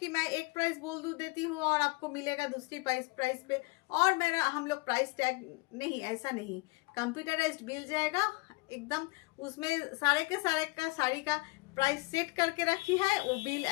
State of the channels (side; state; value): right; quieter; 25.5 dB